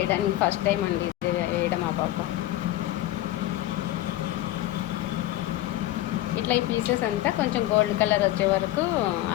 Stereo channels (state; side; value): quieter; right; 15.2 dB